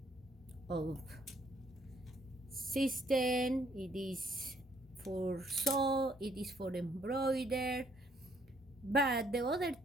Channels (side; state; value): both; normal; correlation 0.67